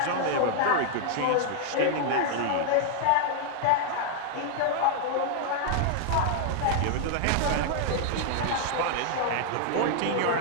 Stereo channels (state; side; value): different; both; correlation -0.01